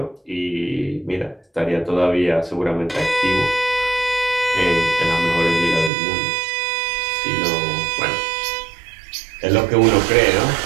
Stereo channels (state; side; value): drops out; left; at 5.9 s